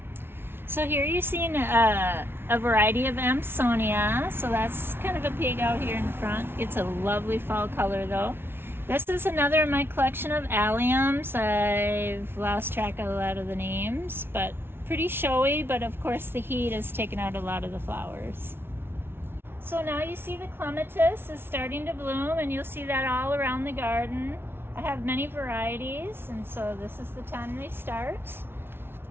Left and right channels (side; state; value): left; late; 0.11 ms